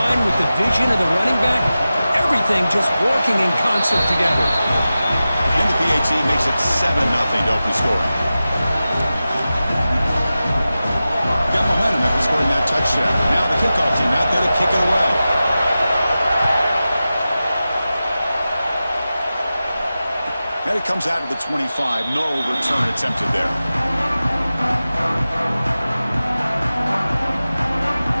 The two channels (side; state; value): both; inverted; correlation -0.94